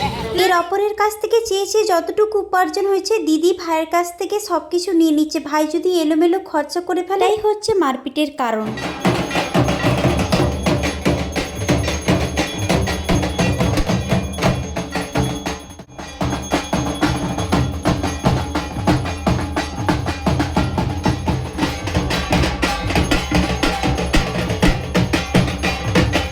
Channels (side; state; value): both; identical; correlation 1.00